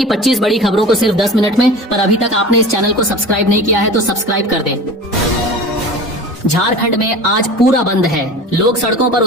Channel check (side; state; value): both; normal; correlation 0.36